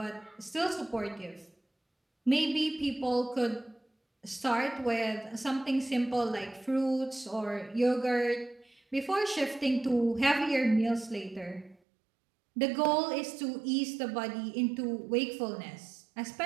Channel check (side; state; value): left; drops out; at 11.8 s